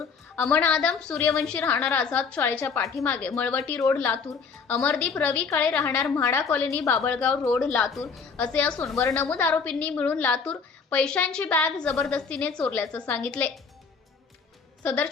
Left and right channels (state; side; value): quieter; right; 5.5 dB